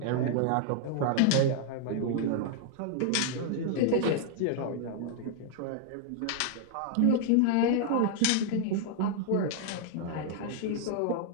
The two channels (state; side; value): different; both; correlation 0.00